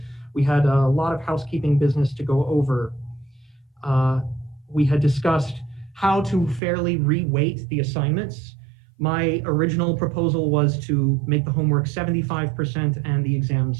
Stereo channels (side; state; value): left; drops out; at 6.6 s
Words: We had a lot of housekeeping business to go over. We had discussed how to fairly re-weight the assignments. My original proposal was to make the homework 75% and the